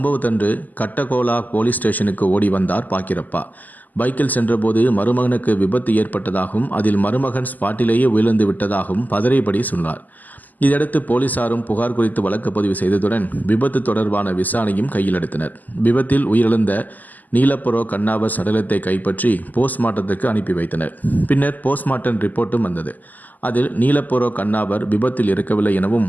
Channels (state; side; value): late; right; 0.083 ms